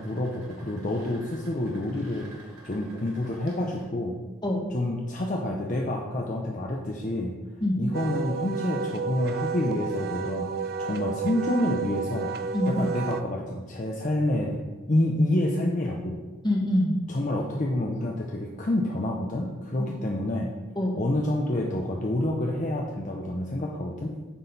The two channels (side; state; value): both; normal; correlation 0.70